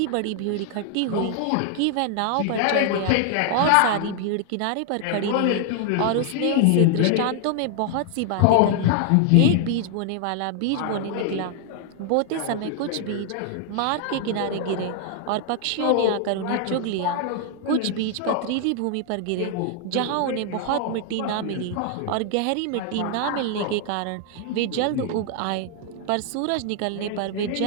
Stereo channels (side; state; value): both; different; correlation 0.00